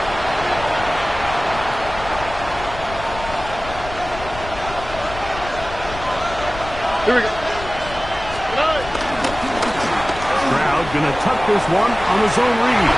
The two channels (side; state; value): left; noise; rumble, 12 dB below the sound